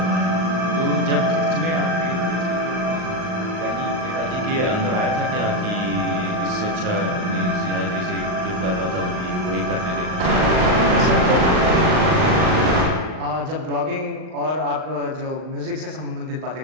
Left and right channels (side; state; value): left; late; 39 ms